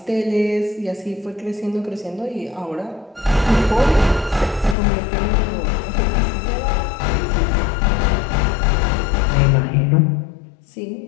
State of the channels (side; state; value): right; drops out; at 4.8 s